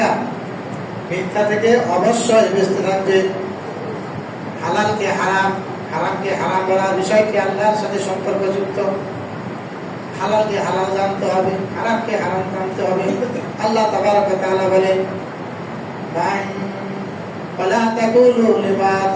মিথ্যা থেকে অবশ্যই বেঁচে থাকবে। হালালকে হারাম, হারামকে হারাম বলার বিষয়টি আল্লাহর সাথে সম্পর্কযুক্ত। হালালকে হালাল জানতে হবে, হারামকে হারাম জানতে হবে। আল্লাহ তাবারক ওয়া তাআলা বলেন, ولا تقولوا لما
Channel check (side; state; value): both; identical; correlation 1.00